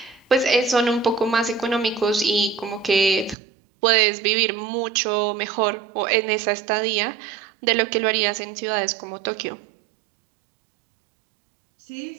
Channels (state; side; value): drops out; left; at 3.4 s